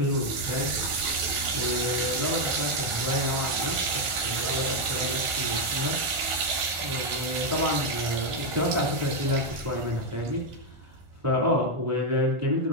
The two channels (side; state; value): left; late; 1.5 ms